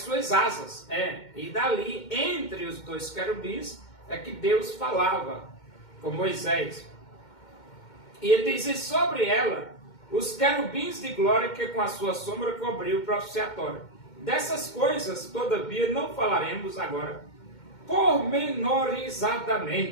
asas. E dali, entre os 2 querubins, é que Deus falava com Moisés. E ele diz, e sobre ela os querubins de glória que com a sua sombra cobriu o propiciatório. Dessas coisas, todavia, não falaremos agora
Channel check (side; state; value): right; late; 2.2 ms